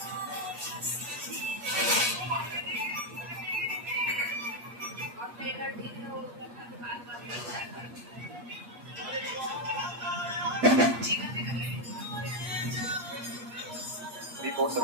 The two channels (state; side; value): late; left; 8.4 ms